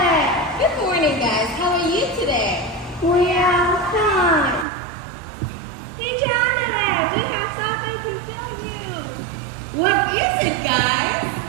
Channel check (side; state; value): left; drops out; at 4.7 s